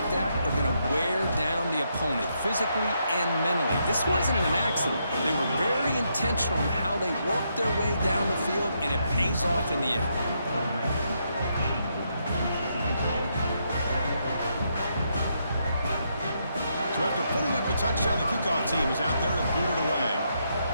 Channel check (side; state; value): both; inverted; correlation -0.78